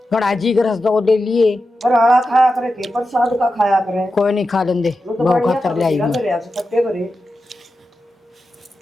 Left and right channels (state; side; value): normal; both; correlation 0.91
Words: गड़ा जी रस दो ले लिए पर आड़ा खाया करे के प्रसाद का खाया करे। कोई नहीं खा लेंगे, बहुत खातर ले आई